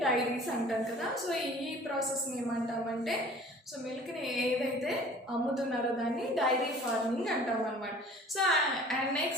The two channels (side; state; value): both; normal; correlation 0.48